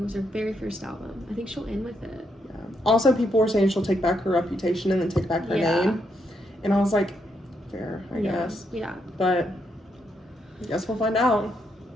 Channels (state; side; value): normal; both; correlation 0.78